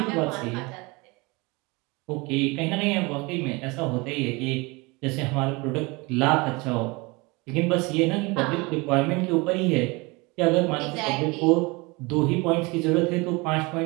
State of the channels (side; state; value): left; quieter; 25.7 dB